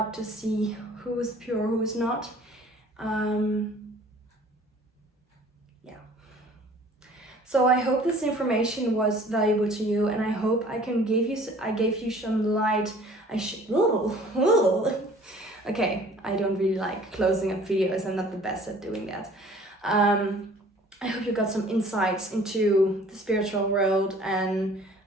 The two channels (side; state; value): both; normal; correlation 0.51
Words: to see who is pure, who is not. So I hope this information was valuable to you, and I hope I gave you some light. Okay, I don't really like closing up videos. I'm not the best at doing that. I hope you got some insights into the spiritual world, and